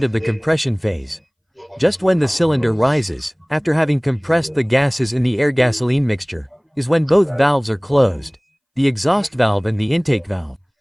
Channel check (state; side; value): identical; both; correlation 1.00